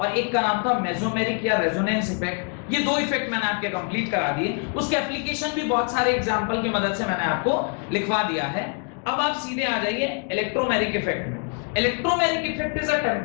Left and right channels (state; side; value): quieter; right; 38.1 dB